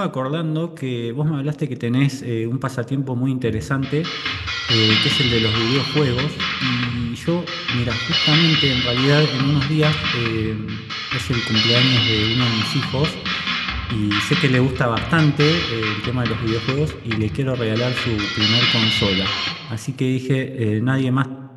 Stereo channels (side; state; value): both; identical; correlation 1.00